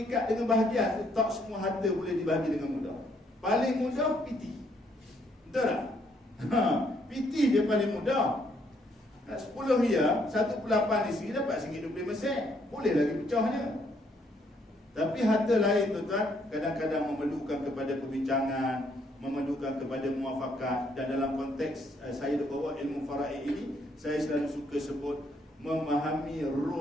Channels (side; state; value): both; normal; correlation 0.70